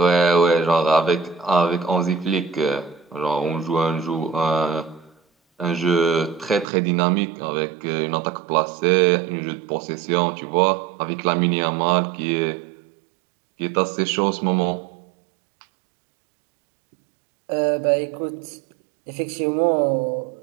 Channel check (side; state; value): left; drops out; at 6.7 s